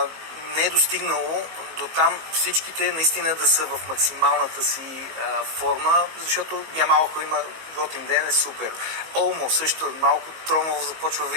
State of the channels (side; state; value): left; late; 19 ms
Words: Не е достигнало до там всичките наистина да са в максималната си форма, защото Ямал, ако има готин ден, е супер. Олмо също малко тромово започва